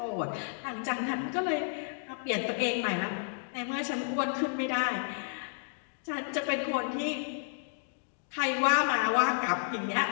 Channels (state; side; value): silent; right; digital silence